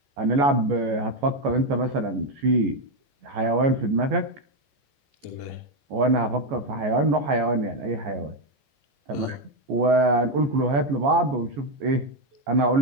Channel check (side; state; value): left; late; 14 ms